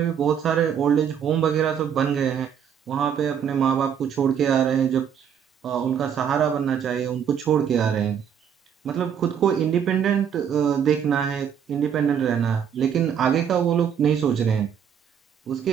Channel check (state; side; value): quieter; left; 8.2 dB